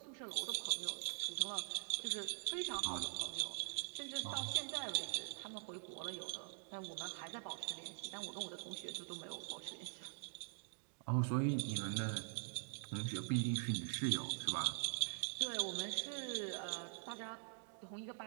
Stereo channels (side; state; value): left; silent; digital silence